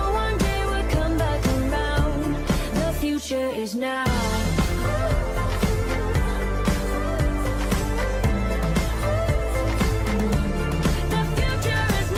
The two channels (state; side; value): identical; both; correlation 1.00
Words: one day we'll come back around. The future is now.